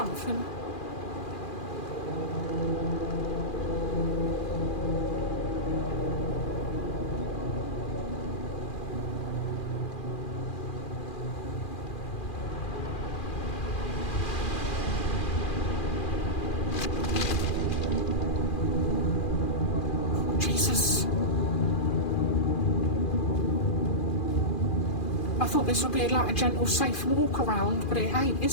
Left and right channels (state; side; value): late; right; 2.4 ms